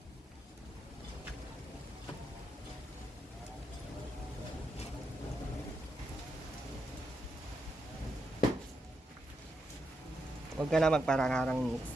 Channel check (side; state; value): both; normal; correlation 0.84